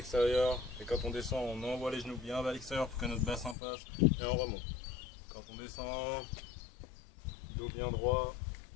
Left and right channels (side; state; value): right; drops out; at 3.6 s